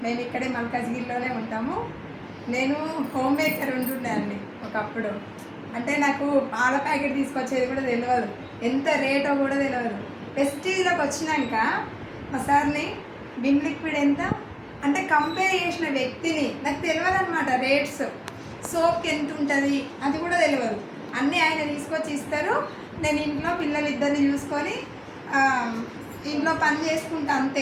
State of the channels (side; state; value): both; identical; correlation 1.00